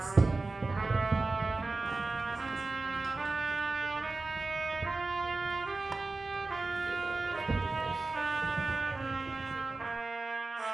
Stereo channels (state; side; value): quieter; left; 3.5 dB